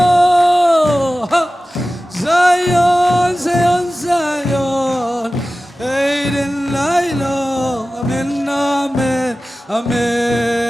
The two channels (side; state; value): both; normal; correlation 0.96